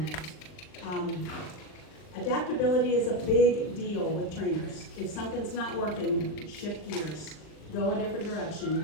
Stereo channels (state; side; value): late; right; 39 ms